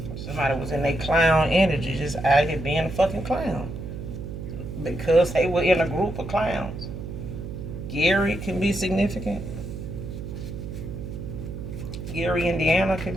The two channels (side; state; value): right; noise; hum, 8 dB below the sound